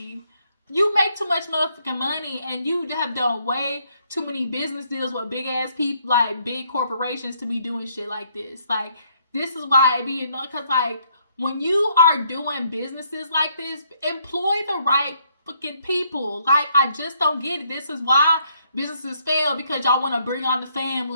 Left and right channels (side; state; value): both; inverted; correlation -0.70